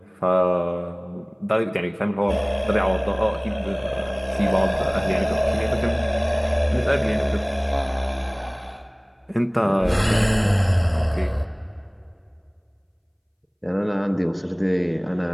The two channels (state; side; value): identical; both; correlation 1.00